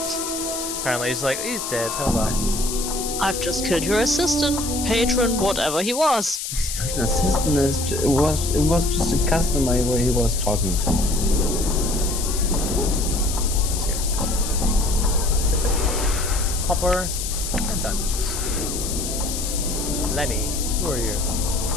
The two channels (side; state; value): left; noise; hiss, 5 dB below the sound